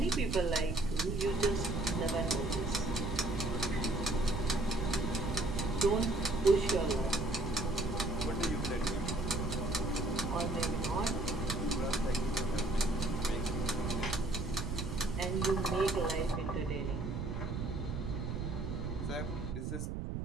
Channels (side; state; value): right; noise; rumble, 3 dB below the sound